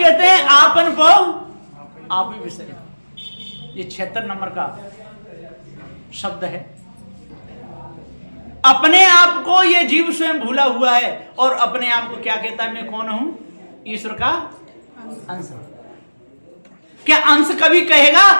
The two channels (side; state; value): both; inverted; correlation -1.00